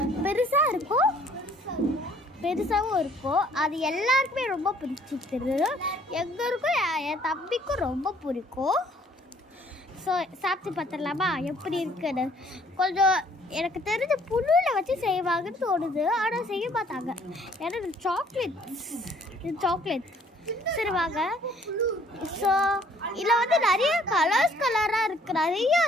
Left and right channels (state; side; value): normal; both; correlation 0.60